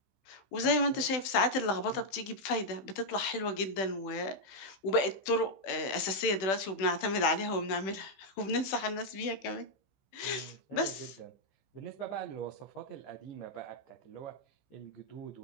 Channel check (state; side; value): late; right; 16 ms